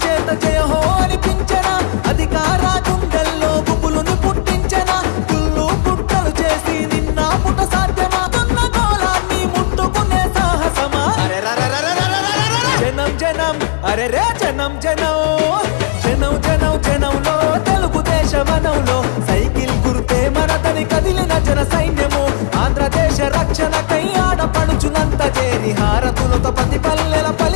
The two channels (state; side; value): silent; right; digital silence